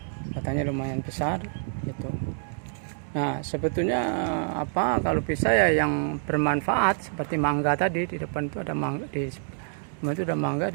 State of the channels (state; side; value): silent; left; digital silence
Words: batangnya lumayan besar. Itu. Nah, sebetulnya apa kalau bisa ya yang bermanfaat seperti mangga tadi, di depan itu ada mangga, di itu ada mangga,